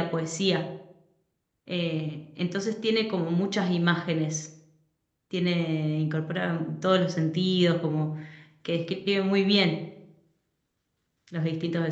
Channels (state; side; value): identical; both; correlation 1.00